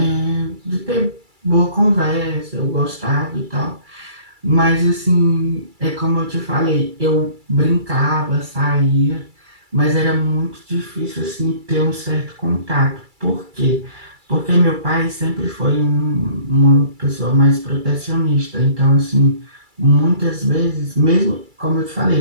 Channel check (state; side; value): late; left; 2.3 ms